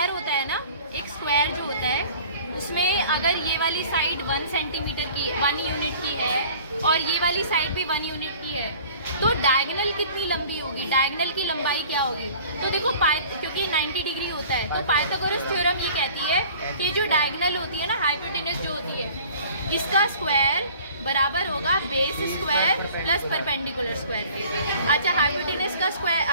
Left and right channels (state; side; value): inverted; both; correlation -0.48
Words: होता है ना, एक स्क्वायर जो होता है उसमें अगर ये वाली साइड 1 सेंटीमीटर की 1 यूनिट की है और ये वाली साइड भी 1 यूनिट की है, तो डायगोनल कितनी लंबी होगी, डायगोनल की लंबाई क्या होगी। तो देखो क्योंकि 90 डिग्री होता है तो पाइथागोरस थ्योरम ये कहती है कि जो डायगोनल होती है ना, हाइपोटेनस जो होती है, इसका स्क्वायर बराबर होगा base square plus perpendicular square के। अच्छा, हाइपोटेनस का स्क्वायर,